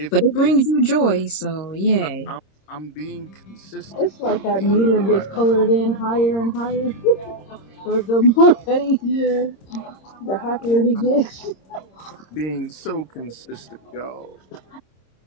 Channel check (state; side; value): late; right; 26 ms